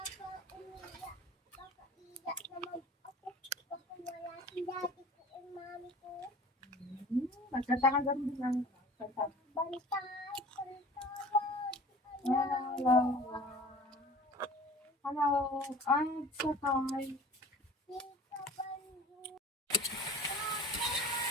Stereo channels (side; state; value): both; normal; correlation 0.43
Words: Nagkataka ganun lang. Hello. I'm sakay.